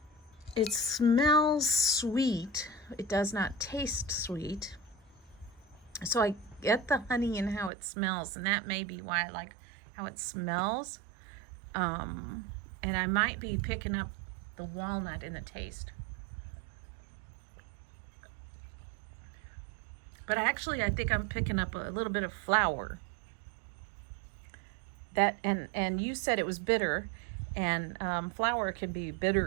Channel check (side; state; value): left; drops out; at 7.7 s